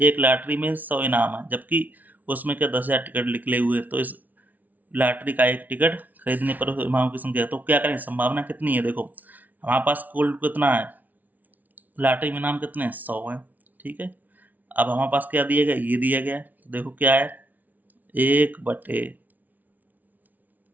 एक लॉटरी में 100 इनाम है, जबकि उसमें क्या 10,000 टिकट निकले हुए, तो इस लॉटरी का एक टिकट खरीदने पर इनाम की संख्या, तो क्या करें, संभावना कितनी है। देखो हमारे पास कुल कितना है, लॉटरी में इनाम कितने हैं, 100 है, ठीक है। अब हमारे पास क्या दिया गया, ये दिया गया है, तो देखो क्या है, एक बटे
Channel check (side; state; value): left; late; 0.078 ms